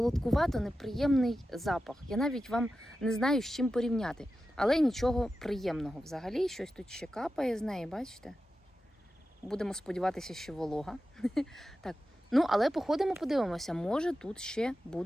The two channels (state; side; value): normal; both; correlation 0.92